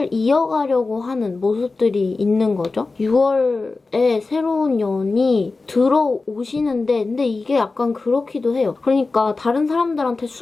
이어가려고 하는 모습들이 있는 거죠. 6월에 새로운 연이 들어오시는데, 근데 이게 약간 그렇기도 해요. 그러니까 다른 사람들한테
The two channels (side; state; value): right; quieter; 3.7 dB